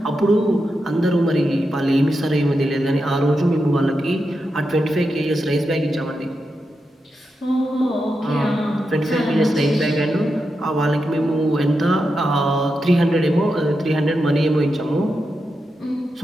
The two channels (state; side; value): normal; both; correlation 0.87